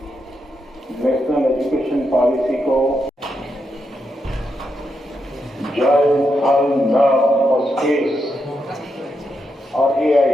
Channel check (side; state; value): both; normal; correlation 0.83